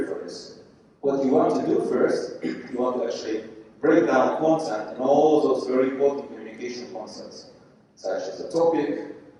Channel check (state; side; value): identical; both; correlation 1.00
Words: for this. What you want to do first, you want to actually break down content and all those very important communication concepts, such as the topic,